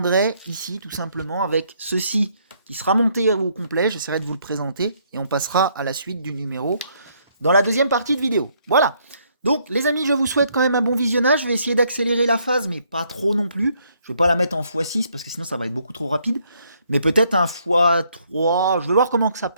ici tout simplement avec ceci qui sera monté au complet. J'essaierai de vous le présenter et on passera à la suite du numéro dans la deuxième partie de vidéo. Voilà. Donc, les amis, je vous souhaite quand même un bon visionnage. Je vais essayer d'accélérer la phase, mais pas trop non plus. Je vais pas la mettre en x6 parce que sinon ça va être beaucoup trop rapide. Mais peut-être un x3. Je vais voir comment que ça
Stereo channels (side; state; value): both; inverted; correlation -0.69